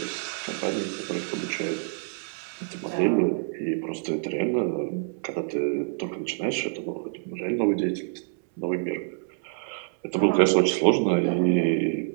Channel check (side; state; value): left; silent; 60 dB below the other